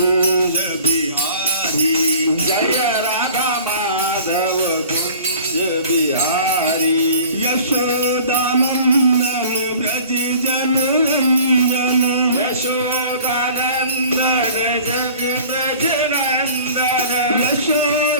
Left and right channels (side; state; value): both; inverted; correlation -0.46